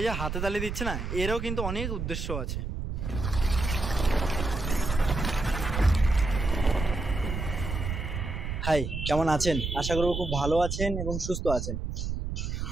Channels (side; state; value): right; noise; rumble, 4 dB below the sound